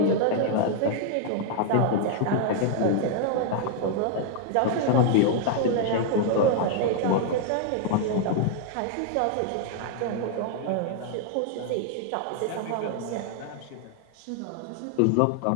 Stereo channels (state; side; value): different; both; correlation 0.00